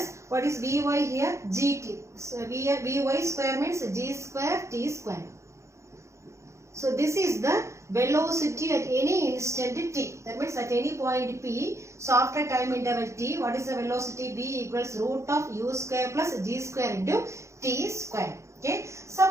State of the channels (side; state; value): left; late; 0.14 ms